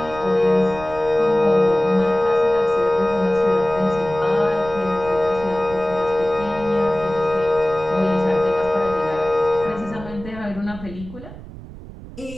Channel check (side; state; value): right; noise; rumble, 15 dB below the sound